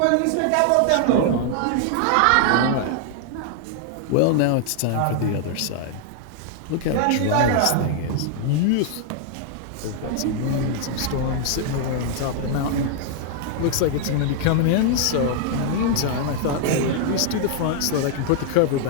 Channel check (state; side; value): different; both; correlation -0.01